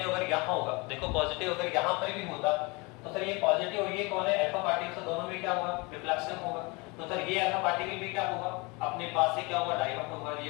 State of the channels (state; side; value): quieter; right; 27.1 dB